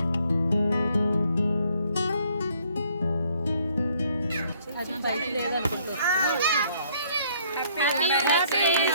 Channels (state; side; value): inverted; both; correlation -0.64